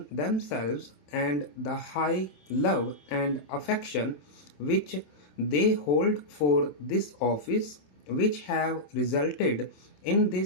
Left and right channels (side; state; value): right; late; 27 ms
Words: themselves and the high love and affection which they hold for this office which have resulted in